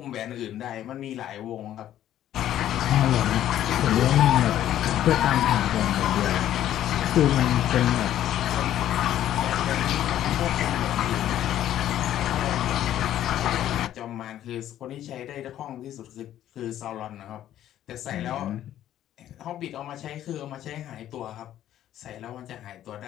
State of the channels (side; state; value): right; quieter; 12.0 dB